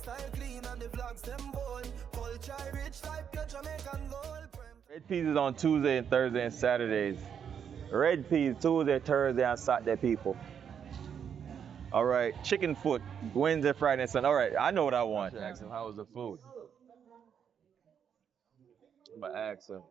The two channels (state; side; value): quieter; left; 7.9 dB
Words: clean and the vlogs them bold. Culture rich like your Jamaican gold. Red peas is on Tuesday and Thursday and Saturdays. Red peas Tuesday, Thursday, and Saturday, people. All right, chicken foot Wednesday, Friday, and Sunday. All right, I know what I want. Ask him how was the food. I'm gonna ask him.